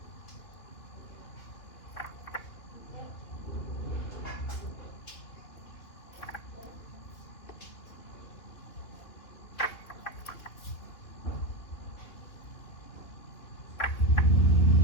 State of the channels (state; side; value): late; right; 2.9 ms